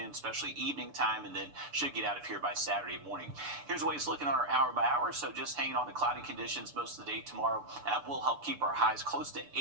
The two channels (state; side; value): late; left; 6.9 ms